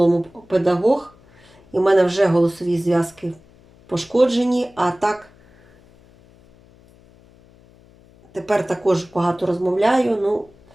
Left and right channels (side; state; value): left; noise; hum, 28 dB below the sound